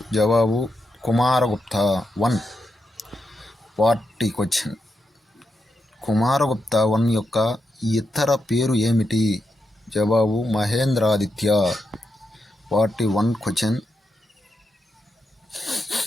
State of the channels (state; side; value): normal; both; correlation 0.85